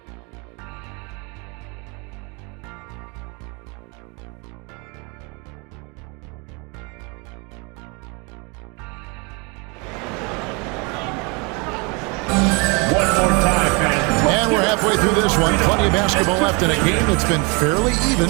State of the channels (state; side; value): quieter; left; 30.4 dB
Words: And we're halfway through this one. Plenty of basketball left in a game that's been fairly